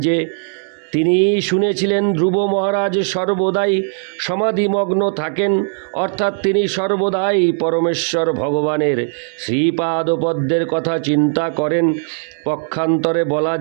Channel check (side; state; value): left; silent; 67 dB below the other